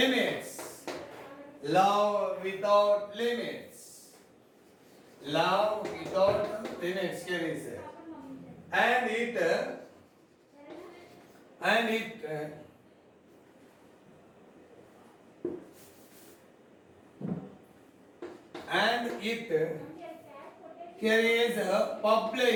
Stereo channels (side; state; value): both; identical; correlation 1.00